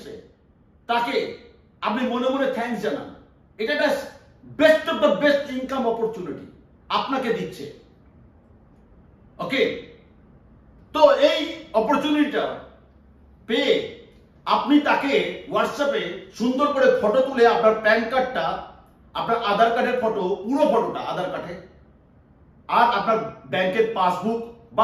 তাকে আপনি মনে মনে থ্যাঙ্কস জানান। এটা একটা best of the best income opportunity আপনাকে দিচ্ছে। ওকে, তো এই অপরচুনিটিটা পেয়ে আপনি তাকে হোয়াটসঅ্যাপে সুন্দর করে ফটো তুলে আপনার প্যান কার্ডটা, আপনার আধার কার্ডের ফটো, পুরো ফটোটা আধার কার্ডে, আর আপনার ব্যাংকের পাসবুক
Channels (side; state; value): both; identical; correlation 1.00